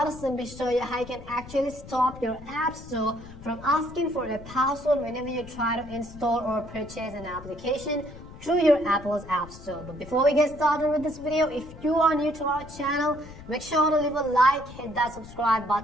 to simply show you how you can actually stop your App Store from asking for a password whenever you try to install or purchase an application through your Apple's App Store. But before we get started with this video, if you are new to our channel, make sure to leave a like, hit that subscribe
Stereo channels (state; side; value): noise; left; rumble, 16 dB below the sound